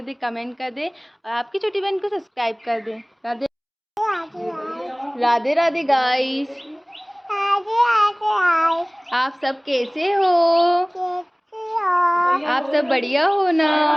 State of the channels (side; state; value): both; identical; correlation 1.00